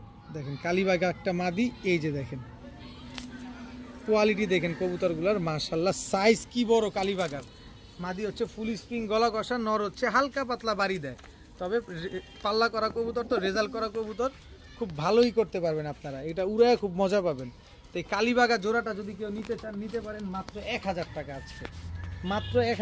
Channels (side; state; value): both; identical; correlation 1.00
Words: দেখেন, কালীবাগা একটা মাদি। এই যে দেখেন কোয়ালিটি দেখেন কবুতরগুলোর, মাশাআল্লাহ। সাইজ কি বড় কালীবাগার। মাদি হচ্ছে ফুল স্প্রিং গলা কষা, নর হচ্ছে হালকা পাতলা বাড়ি দেয়। তবে পাল্লা করা কবুতর, তো রেজাল্ট করা কবুতর খুব ভালোই করতে পারবেন আপনারা, এটা উড়ায় খুব মজা পাবেন। তো এই কালীবাগা জোড়াটা যদি কেউ নিতে চান, নিতে পারেন মাত্র 1000 টাকা আজকে, মাত্র